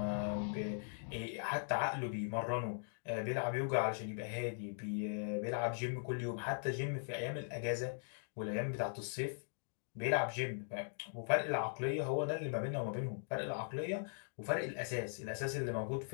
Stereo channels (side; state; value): right; silent; digital silence